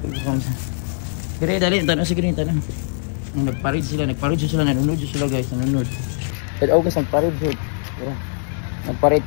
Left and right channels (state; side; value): silent; right; digital silence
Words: ipakaon sa. Gray, dali, tanong si Gray, tanong. Nagparid sila, nanonood sila guys, nanonood. Pero guys, nagparid sila. Nagparid